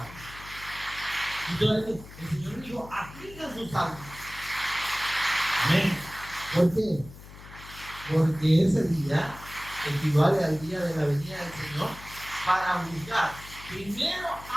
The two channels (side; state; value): left; noise; hum, 17 dB below the sound